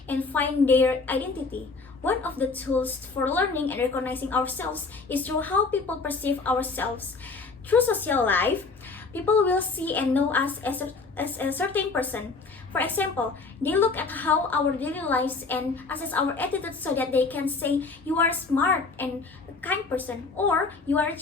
and find their identity. One of the tools for learning and recognizing ourselves is through how people perceive ourselves. Through social life, people will see and know us as a certain person. For example, they look at how our daily lives and assess our attitude so that they can say you are smart and a kind person, or you are a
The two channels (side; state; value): right; quieter; 4.2 dB